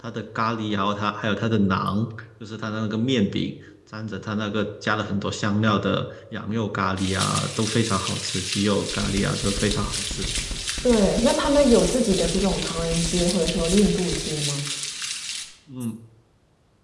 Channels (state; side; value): identical; both; correlation 1.00